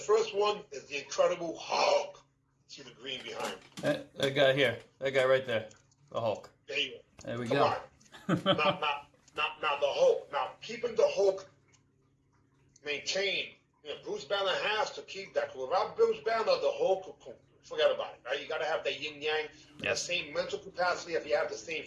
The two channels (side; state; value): both; identical; correlation 1.00